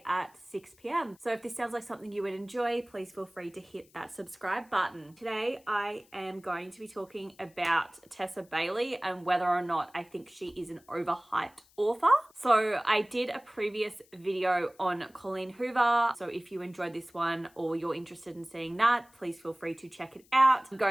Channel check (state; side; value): noise; left; hiss, 30 dB below the sound